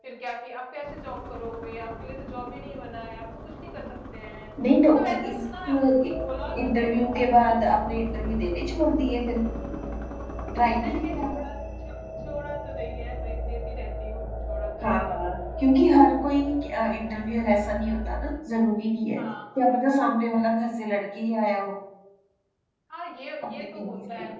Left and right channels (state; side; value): identical; both; correlation 1.00